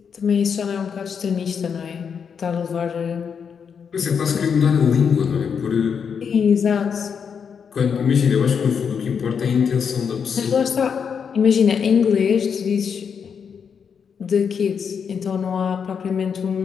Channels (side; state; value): right; quieter; 6.8 dB